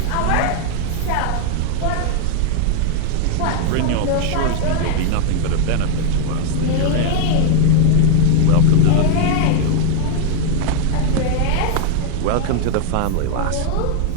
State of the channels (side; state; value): both; different; correlation 0.00